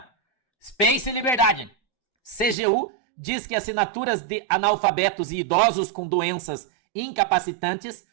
Space e Liberdade. CGU diz que assinaturas de analfabetos e idosos com doenças incapacitantes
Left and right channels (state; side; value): drops out; left; at 2.6 s